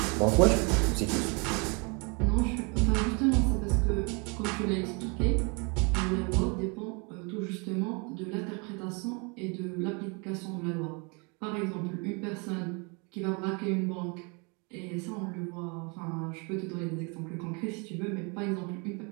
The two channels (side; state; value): left; quieter; 32.1 dB